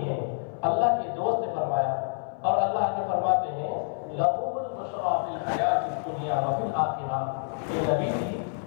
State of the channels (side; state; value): right; silent; 60 dB below the other